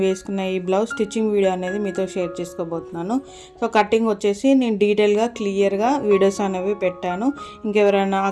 వేసుకున్న ఈ బ్లౌజ్ స్టిచ్చింగ్ వీడియో అనేది మీతో షేర్ చేసుకోబోతున్నాను. సో కటింగ్ వచ్చేసి నేను డీటెయిల్గా క్లియర్గా వీడియోస్ అనేవి పెట్టాను. ఇంకెవరైనా ఆ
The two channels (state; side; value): identical; both; correlation 1.00